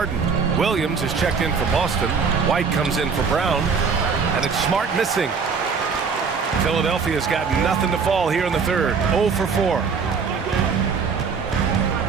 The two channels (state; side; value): quieter; left; 5.6 dB